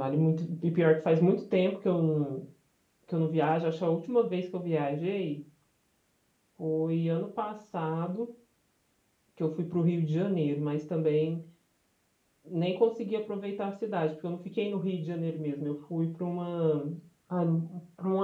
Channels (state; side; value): identical; both; correlation 1.00